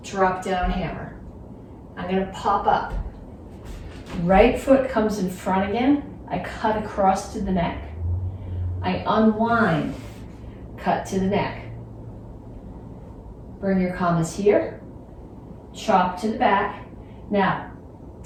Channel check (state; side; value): identical; both; correlation 1.00